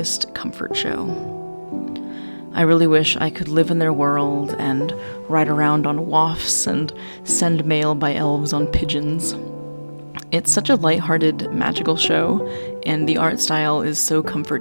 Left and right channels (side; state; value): both; inverted; correlation -1.00